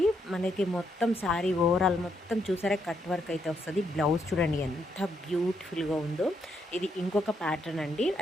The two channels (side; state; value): both; normal; correlation 0.77